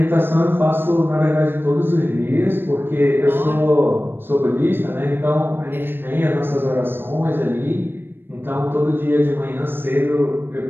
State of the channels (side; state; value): left; late; 0.099 ms